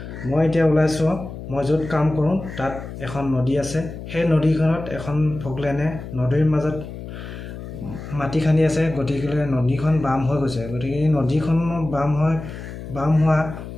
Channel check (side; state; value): left; noise; hum, 11 dB below the sound